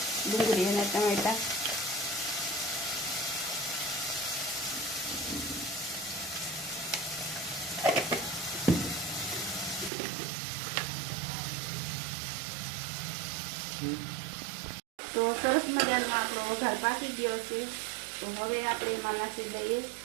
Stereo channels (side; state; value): left; drops out; at 9.9 s